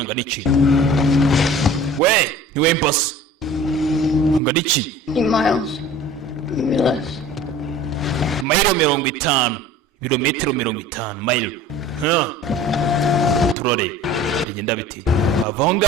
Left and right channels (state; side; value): normal; both; correlation 0.43